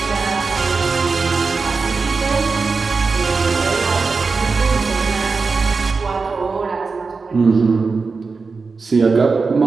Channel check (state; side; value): quieter; left; 4.5 dB